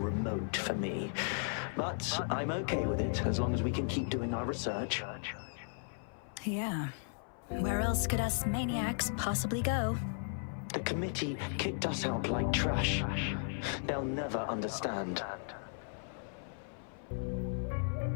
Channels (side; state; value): right; silent; 54 dB below the other